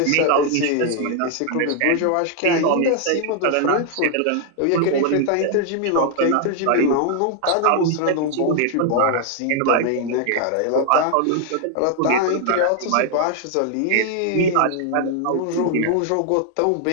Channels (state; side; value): different; both; correlation 0.00